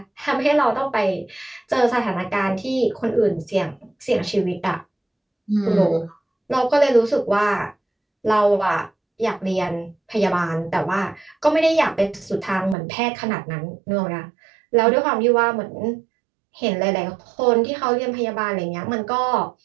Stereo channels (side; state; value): left; drops out; at 12.8 s